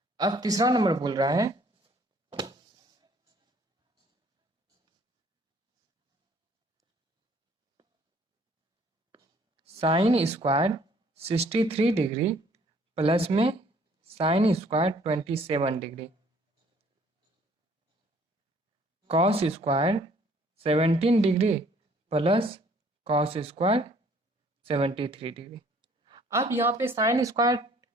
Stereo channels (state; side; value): normal; both; correlation 0.59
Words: अब तीसरा नंबर बोल रहा है साइन स्क्वायर 63 डिग्री प्लस में sine square 27 degree, cos square 17 degree plus cos square 73 degree. अब यहाँ पे sign square